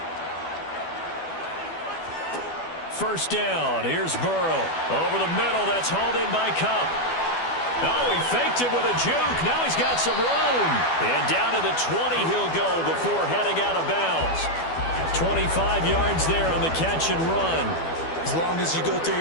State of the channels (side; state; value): right; late; 12 ms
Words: First down. Here's Burrow. Over the middle. That's hauled in by Kupp. Oh, he faked it with a juke. Now he's got some room. And down to the 20 he'll go before heading out of bounds. 25 yards there on the catch and run. As long as you go through